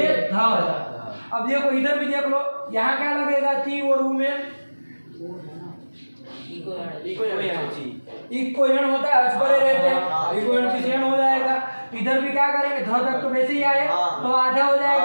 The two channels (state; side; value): inverted; both; correlation -1.00